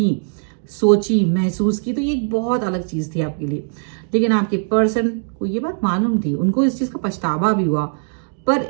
सोची, महसूस की, तो ये एक बहुत अलग चीज थी आपके लिए। लेकिन आपके पर्सन को ये बात मालूम थी, उनको इस चीज का पछतावा भी हुआ, पर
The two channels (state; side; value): silent; left; digital silence